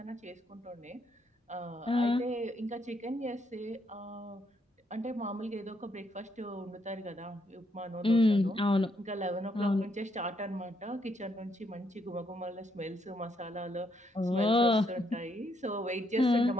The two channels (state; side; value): normal; both; correlation 0.75